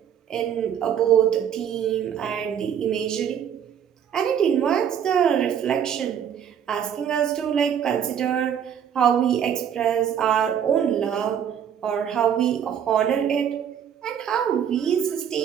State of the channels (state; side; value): quieter; left; 8.7 dB